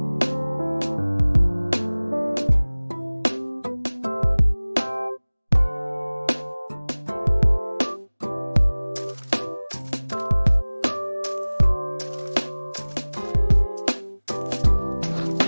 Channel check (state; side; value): inverted; both; correlation -1.00